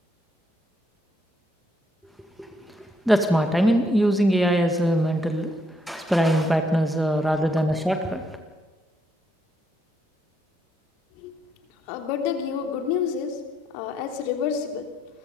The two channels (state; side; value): normal; both; correlation 0.75